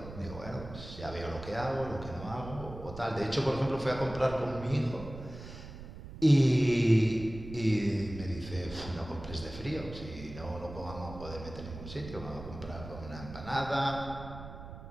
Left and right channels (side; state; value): right; noise; rumble, 12 dB below the sound